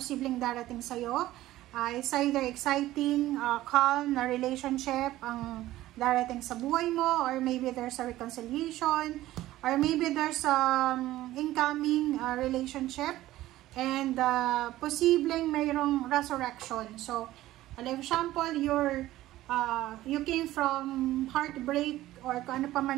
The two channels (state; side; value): quieter; left; 15.5 dB